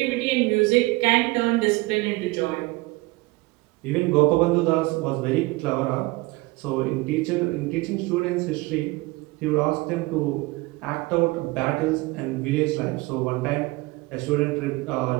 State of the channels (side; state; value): left; quieter; 22.6 dB